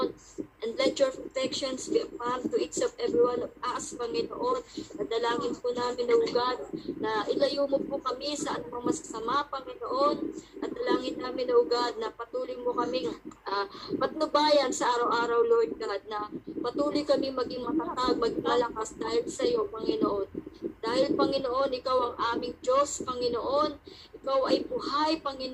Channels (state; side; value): identical; both; correlation 1.00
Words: And let your protections be upon to each of every one of us, Panginoon. Nadalangin po namin, O God, na ilayo mo po kami sa anumang masasama, Panginoon. At dalangin namin, O God, na patuloy mo kaming patnubayan sa araw-araw, Lord God, na patuloy kami maging matatag, maging malakas dahil sa iyo, Panginoon. Dahil, Panginoon, Ikaw ang aming Diyos, Panginoon. Ikaw ay buhay,